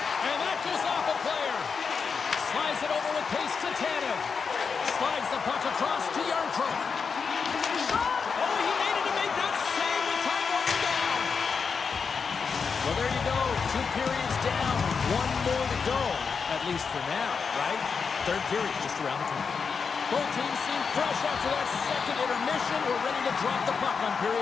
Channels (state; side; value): quieter; right; 5.6 dB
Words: and that goes off a player. Slides it over with pace to Tanev. Slides the puck across to Yarncrook. Shot! Oh, he made it to make that save with time running down. Well, there you go. 2 periods down. 1 more to go. At least for now, right? Third period just around the corner. Both teams seem fresh after that second intermission. We're ready to drop the puck on